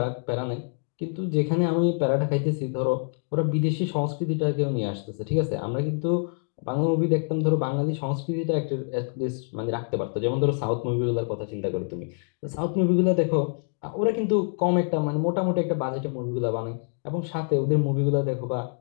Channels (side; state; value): right; silent; 57 dB below the other